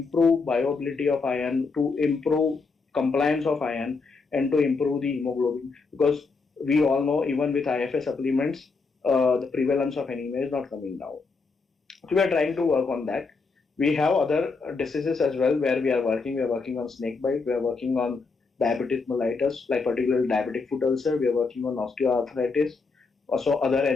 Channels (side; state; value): right; quieter; 4.4 dB